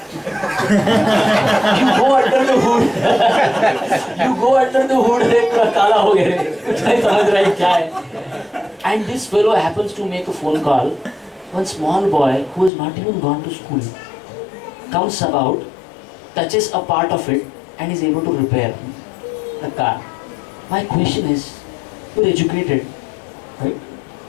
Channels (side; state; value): right; drops out; at 12.7 s